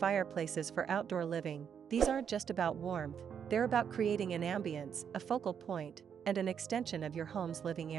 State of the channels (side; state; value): left; quieter; 7.8 dB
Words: for outdoor living. These aren't just about warmth, they're about creating an ambience, a focal point, and an extension of your home's living